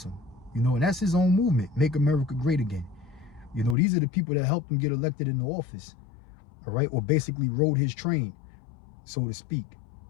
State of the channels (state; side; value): drops out; right; at 3.8 s